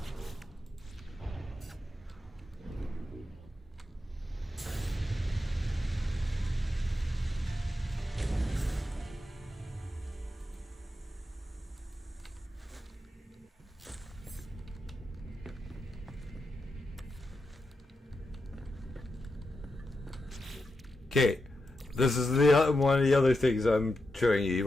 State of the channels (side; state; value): both; normal; correlation 0.87